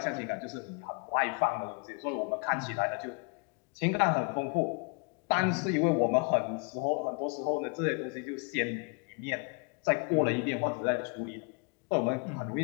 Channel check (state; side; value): quieter; right; 35.4 dB